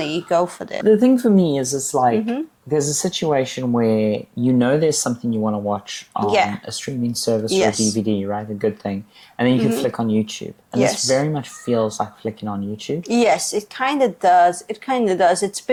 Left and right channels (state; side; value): identical; both; correlation 1.00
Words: go for this. The thing for me is, it's like, there's a situation where you know there's something you want to watch on a streaming service or a DVD, right? A good thing. And then you can flick on YouTube. And this very much feels like flicking on YouTube. Yes, it kind of does. It's a